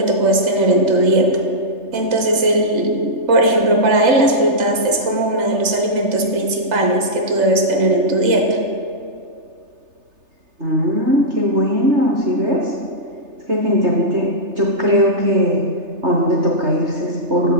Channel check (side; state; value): left; late; 3.3 ms